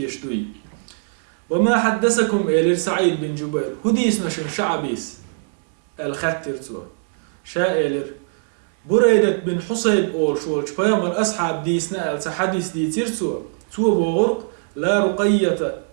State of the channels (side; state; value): left; silent; 65 dB below the other